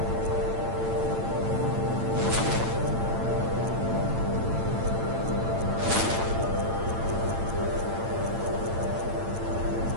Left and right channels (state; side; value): late; left; 8.9 ms